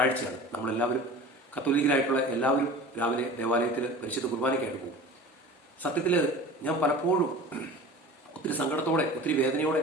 നമ്മളെല്ലാവരും കത്തോലിക്കരായിട്ടുള്ള എല്ലാവരും രാവിലെ ദേവാലയത്തിൽ പരിശുദ്ധ കുർബാനയ്ക്കായിട്ട് പോകും. സത്യത്തിൽ ഞാൻ പലപ്പോഴും ഒത്തിരി സങ്കടത്തോടെ, ഒത്തിരി വേദനയോടെ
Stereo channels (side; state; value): both; normal; correlation 0.38